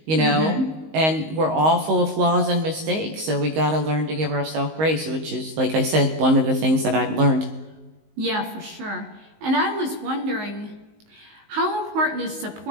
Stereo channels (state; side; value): late; left; 19 ms